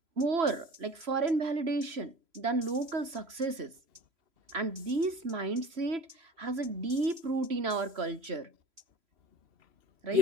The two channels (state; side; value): late; left; 3.0 ms